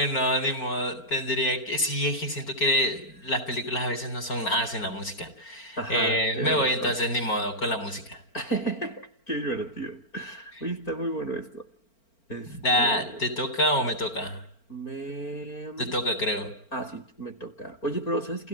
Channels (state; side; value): late; right; 4.4 ms